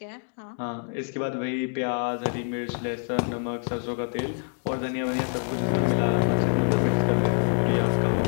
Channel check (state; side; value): silent; right; 61 dB below the other